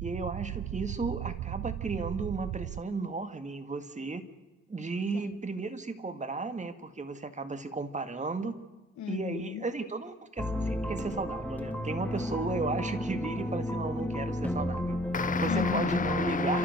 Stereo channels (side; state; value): both; normal; correlation 0.55